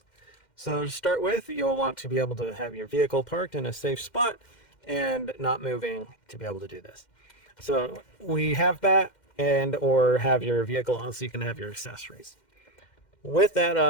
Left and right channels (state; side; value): late; right; 2.1 ms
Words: So to start with, you'll want to be able to have your vehicle parked in a safe spot and not moving to be able to do this. So we have that, and or have your vehicle on so you can have your accessories. With